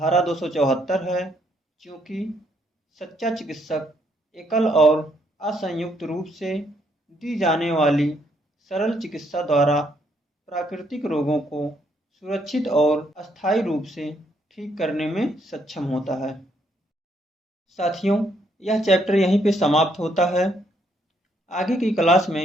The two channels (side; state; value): both; normal; correlation 0.72